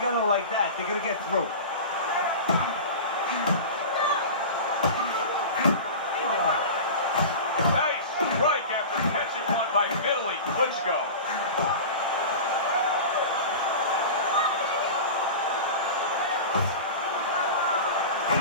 like that, they're going to get through. Nice strike after catching one by Vitali Klitchco.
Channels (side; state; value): both; inverted; correlation -0.31